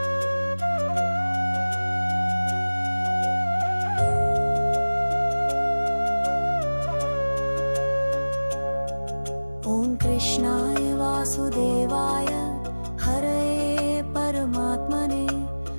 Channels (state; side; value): inverted; both; correlation -1.00